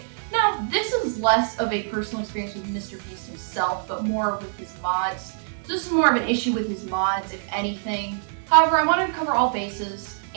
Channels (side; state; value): left; silent; digital silence